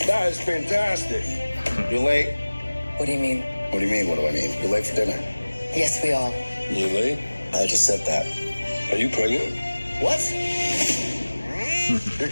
That is fantastic. You late? What do you mean? What do you mean, what do I mean? You're late for dinner. Yes, we are. You late? I just said that. Are you pregnant? What? You're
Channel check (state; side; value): inverted; both; correlation -1.00